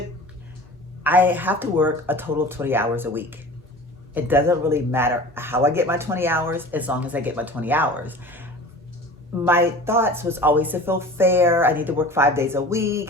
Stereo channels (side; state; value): both; normal; correlation 0.38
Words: I have to work a total of 20 hours a week. It doesn't really matter how I get my 20 hours, as long as I get my 20 hours. My thoughts was always to feel fair. I need to work 5 days a